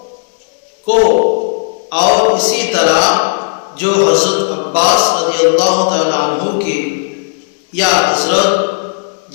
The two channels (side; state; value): right; silent; digital silence